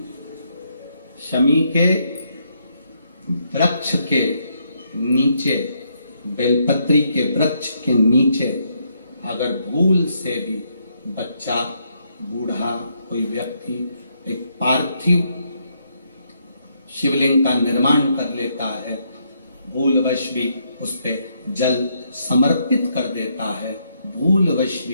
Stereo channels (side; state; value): both; inverted; correlation -0.75